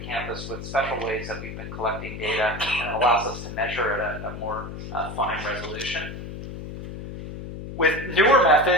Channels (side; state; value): left; noise; hum, 9 dB below the sound